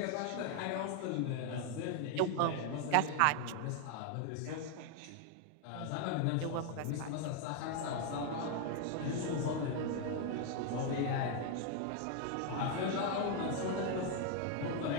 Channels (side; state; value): both; different; correlation 0.00